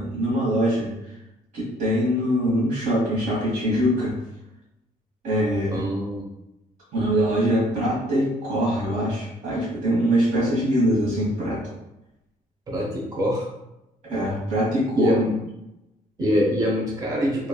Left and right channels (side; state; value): both; normal; correlation 0.61